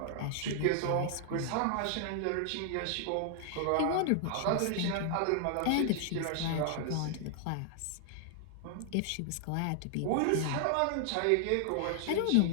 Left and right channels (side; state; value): both; different; correlation -0.01